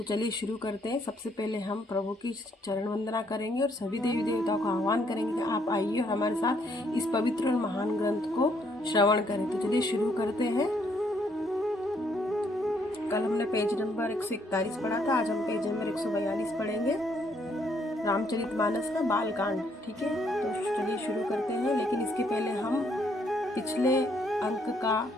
चलिए शुरू करते हैं। सबसे पहले हम प्रभु की चरण वंदना करेंगे और सभी देवी देवताओं का आह्वान करेंगे कि आप आइए और हमारे साथ इस पवित्र और महान ग्रंथ को श्रवण करें। तो चलिए शुरू करते हैं। कल हमने पेज नंबर 141 पढ़ा था, आज हम पेज नंबर 142 पढ़ेंगे, रामचरितमानस का बालकांड। ठीक है, तो चलिए शुरू करते हैं। लेकिन इसके पहले हम पिछले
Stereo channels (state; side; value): normal; both; correlation 0.70